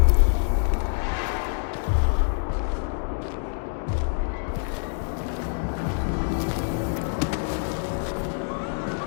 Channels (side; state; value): right; silent; digital silence